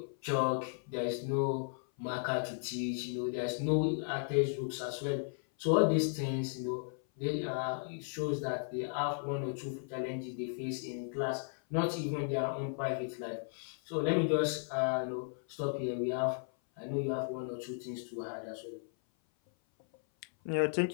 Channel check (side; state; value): right; silent; 54 dB below the other